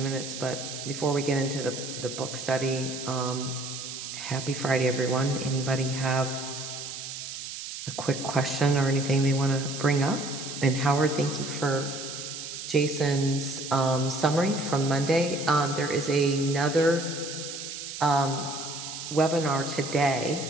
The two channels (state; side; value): noise; right; hiss, 8 dB below the sound